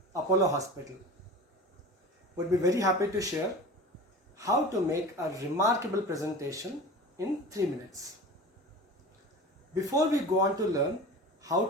Apollo Hospital, would be very happy to share how to make a remarkable presentation in 3 minutes. Before we go on to learn how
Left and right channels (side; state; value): both; normal; correlation 0.35